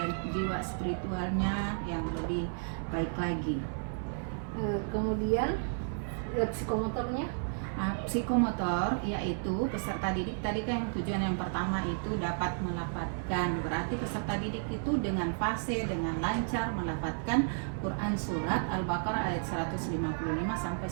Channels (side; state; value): left; silent; 56 dB below the other